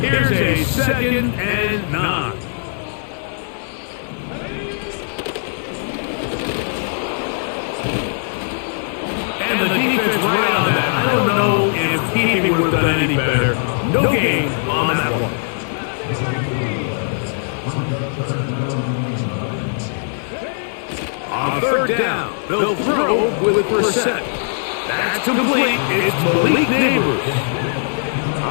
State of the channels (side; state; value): right; silent; digital silence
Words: Here's a second and 9. And the defense right on that. I don't know if he would have done any better. No gain on that one. On third down, they'll throw with Brissett. That's complete. It's Malik Neighbors.